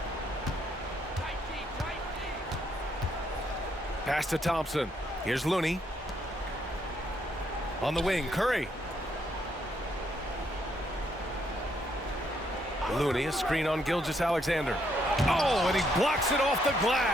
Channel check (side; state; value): both; normal; correlation 0.73